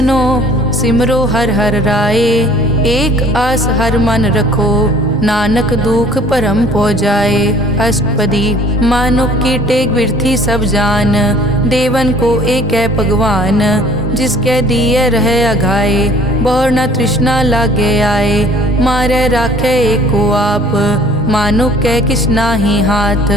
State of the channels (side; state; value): both; normal; correlation 0.53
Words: सिमरो हर हर राय। एक आस हर मन रखो, नानक दुख परम पौ जाए। अष्टपदी मानुक की टेक बिरथी सब जान, देवन को एक है भगवान। जिसके दिए रहे अघाए, बहुर न तृष्णा लागे आए। मारे राखे एको आप, मानुक कै किछ नाही हाथ।